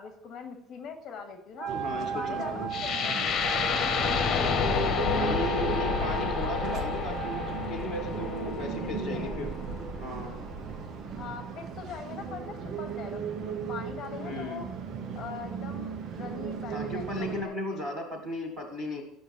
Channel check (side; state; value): both; normal; correlation 0.42